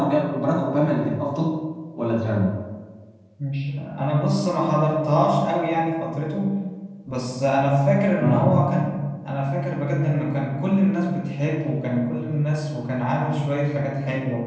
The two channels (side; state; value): both; identical; correlation 1.00